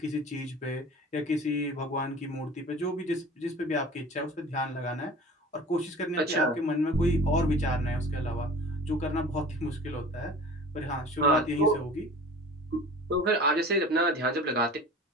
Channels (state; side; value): normal; both; correlation 0.41